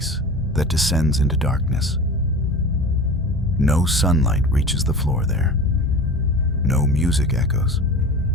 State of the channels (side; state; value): both; normal; correlation 0.35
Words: that descends into darkness. No sunlight reaches the floor there. No music echoes.